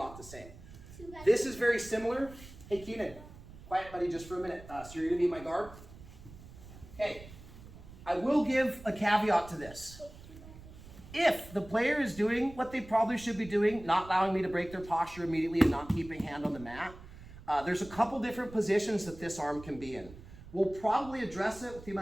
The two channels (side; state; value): right; noise; rumble, 17 dB below the sound